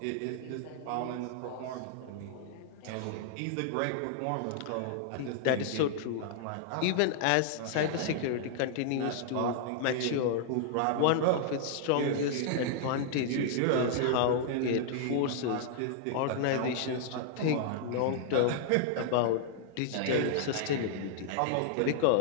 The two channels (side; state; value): both; different; correlation -0.01